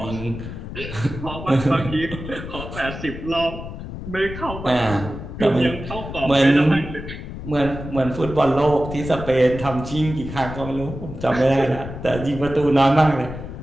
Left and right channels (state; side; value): noise; left; rumble, 10 dB below the sound